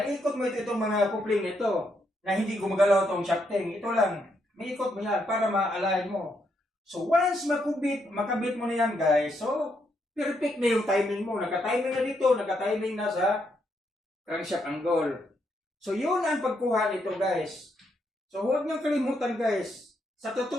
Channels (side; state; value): both; normal; correlation 0.77